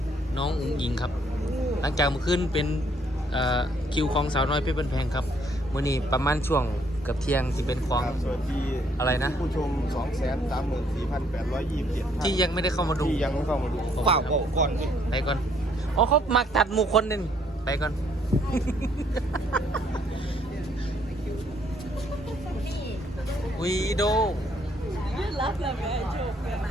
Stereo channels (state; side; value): normal; both; correlation 0.67